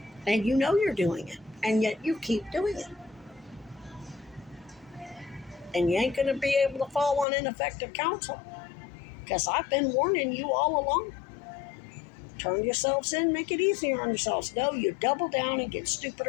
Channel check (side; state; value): right; drops out; at 7.2 s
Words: And you know you're doing it. And yet you keep doing it. And you ain't going to be able to fall on ineffective counsel. Because I've been warning you all along. Turn yourselves in, make it easier on yourselves. No, you double down and get